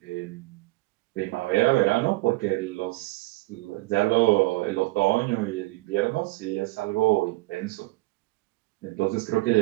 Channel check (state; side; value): quieter; left; 21.6 dB